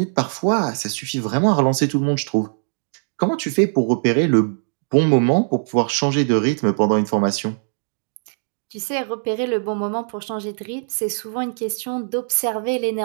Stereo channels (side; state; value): left; silent; digital silence